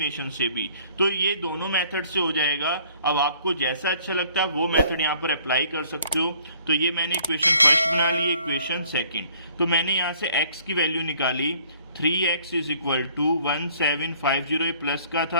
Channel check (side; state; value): both; inverted; correlation -0.58